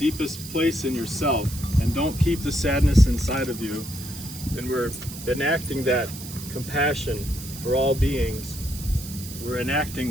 place in yourself and don't keep the sadness inside of you. And we're enacting that compassion for all beings. We're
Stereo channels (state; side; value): noise; right; hiss, 12 dB below the sound